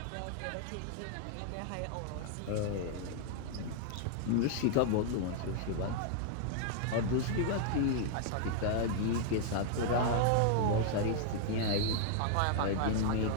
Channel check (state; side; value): different; both; correlation 0.00